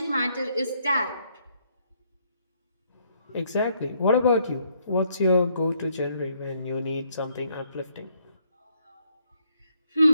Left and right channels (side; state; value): both; inverted; correlation -0.71